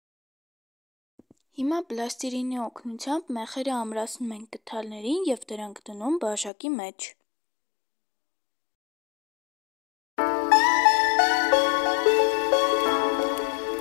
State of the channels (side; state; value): right; drops out; at 6.5 s